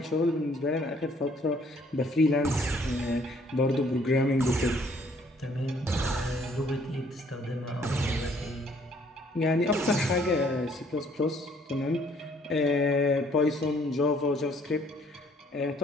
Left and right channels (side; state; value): both; normal; correlation 0.62